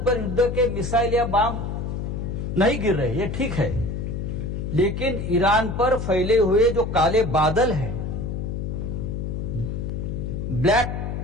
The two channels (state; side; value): noise; left; hum, 4 dB below the sound